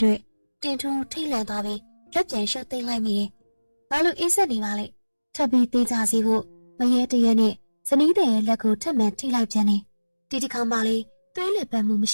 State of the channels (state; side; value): inverted; both; correlation -1.00